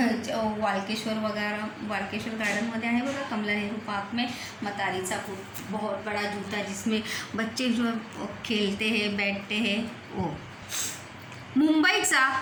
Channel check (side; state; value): both; identical; correlation 1.00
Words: वालकेश्वर गार्डनमध्ये आहे बघा, कमला नेहरू पार्क में मतारीचा बूट, बहुत बड़ा जूता जिसमें बच्चे जो खेलते हैं, बैठते हैं, वो. मुंबईचा